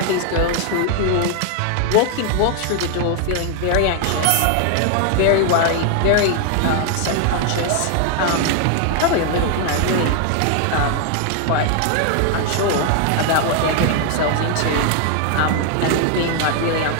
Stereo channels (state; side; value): different; both; correlation 0.00